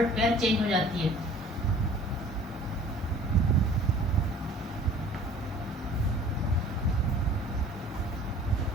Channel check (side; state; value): both; normal; correlation 0.49